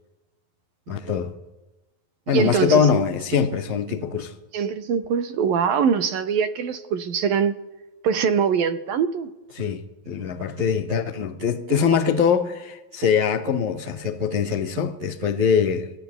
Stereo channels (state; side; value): late; left; 11 ms